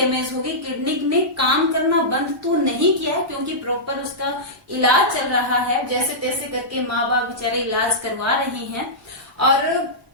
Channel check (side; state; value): both; normal; correlation -0.14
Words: होगी। किडनी ने काम करना बंद तो नहीं किया है, क्योंकि प्रॉपर उसका इलाज चल रहा है, जैसे तैसे करके माँ बाप बेचारे इलाज करवा रहे हैं, और